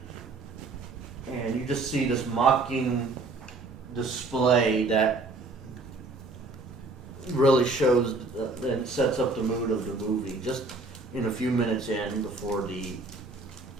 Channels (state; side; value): quieter; left; 3.4 dB